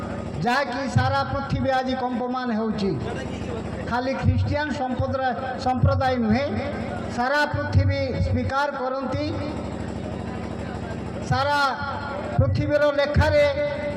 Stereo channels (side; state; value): both; identical; correlation 1.00